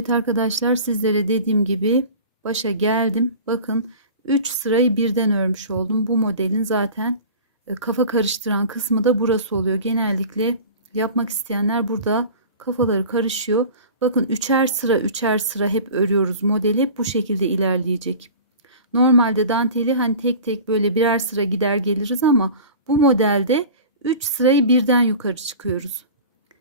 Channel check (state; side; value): inverted; both; correlation -0.38